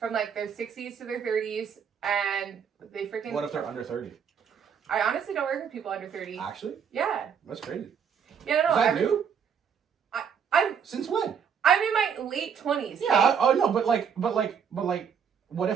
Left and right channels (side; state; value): left; quieter; 7.2 dB